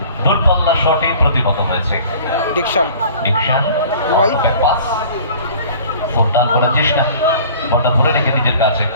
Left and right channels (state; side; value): inverted; both; correlation -0.46